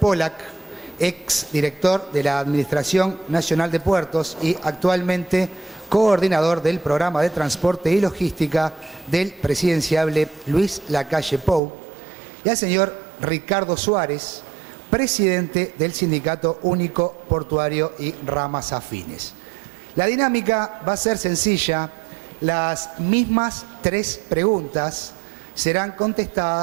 ex director de la Administración Nacional de Puertos y actualmente coordinador del Programa de Transporte y Logística del presidenciable Luis Lacalle Pou. Y al señor Ricardo Suárez, presidente del Sindicato Único Portuario y Ramas Afines. La dinámica va a ser sencilla. Las mismas 3 preguntas serán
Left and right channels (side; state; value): left; drops out; at 11.6 s